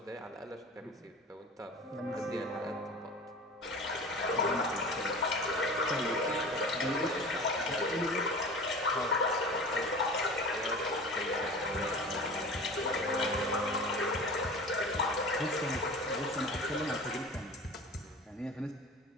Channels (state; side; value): normal; both; correlation 0.36